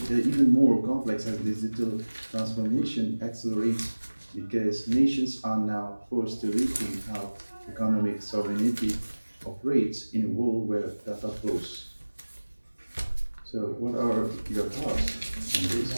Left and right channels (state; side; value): inverted; both; correlation -1.00